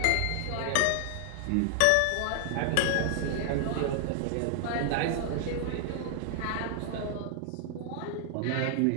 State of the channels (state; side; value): different; both; correlation 0.00